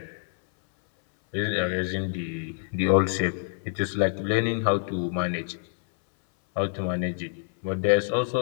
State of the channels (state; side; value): silent; right; 59 dB below the other